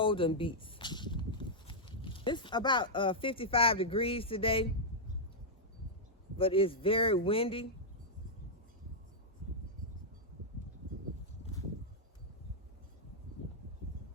beets. It's about 55 degrees today, but it's very windy.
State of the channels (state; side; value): normal; both; correlation -0.06